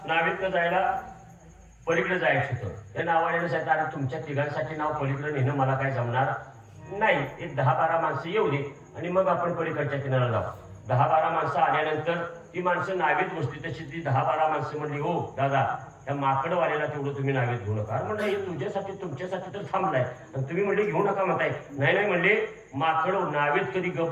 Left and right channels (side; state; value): both; identical; correlation 1.00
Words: नावेतनं जायला पलीकडे जायचं होतं. त्या नावाने सांगितलं अरे तुमच्या तिघांसाठी नाव पलीकडे नेणं मला काय जमणार नाही. एक 10-12 माणसं येऊ दे आणि मग आपण पलीकडच्या किनाऱ्याला जाऊ. 10-12 माणसं आल्यानंतर ती माणसं नावेत बसली. तशी ती 10-12 माणसं म्हणली हो दादा त्या माकडवाल्याला तेवढं तुम्ही नावेत घेऊ नका. म्हणलं हे तुझ्यासाठी तुमच्यासाठी तर थांबलाय आणि तुम्ही म्हणले घेऊ नका म्हणताय. नाही नाही म्हणले माकड नावेत कधी गप